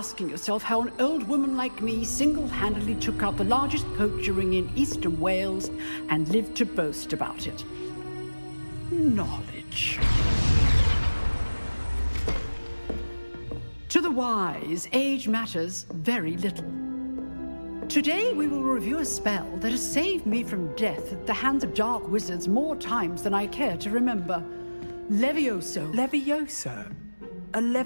yourself how an old woman like me single-handedly took out the largest poacher ring in eastern Wales and lived to boast about it. Knowledge. To the wise, age matters very little. Today we will review a spell that has saved me from death at the hands of dark wizards more times than I care to remember. Levioso. Levioso? A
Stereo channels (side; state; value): both; inverted; correlation -1.00